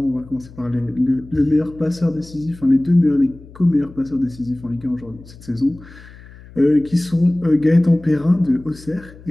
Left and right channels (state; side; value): noise; left; hum, 20 dB below the sound